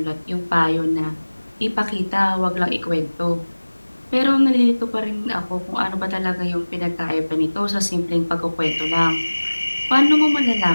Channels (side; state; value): both; inverted; correlation -1.00